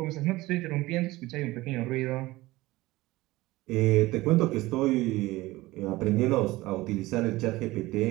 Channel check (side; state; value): left; quieter; 19.1 dB